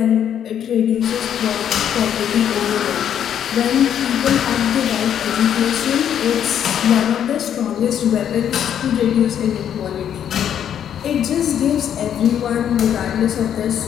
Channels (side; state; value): right; quieter; 9.4 dB